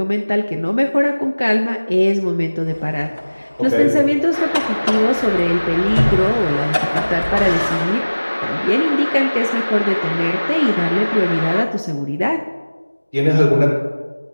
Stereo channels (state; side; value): inverted; both; correlation -1.00